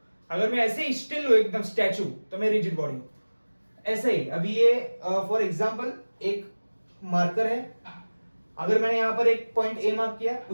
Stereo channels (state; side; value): inverted; both; correlation -1.00